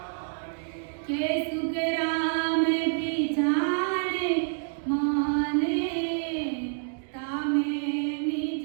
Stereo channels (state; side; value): silent; left; digital silence